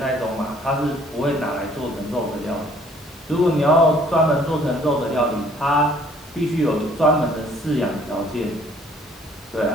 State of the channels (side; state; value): both; normal; correlation 0.59